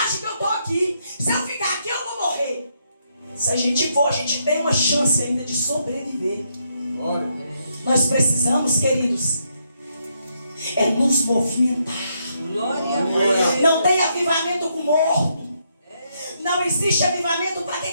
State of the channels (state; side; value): inverted; both; correlation -0.77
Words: que eu estou aqui. Se eu ficar aqui, eu vou morrer. Se a gente for, a gente tem uma chance ainda de sobreviver. Nós precisamos, queridos, é nos movimentar. Não tem avivamento com morto. Não existe avivamento para quem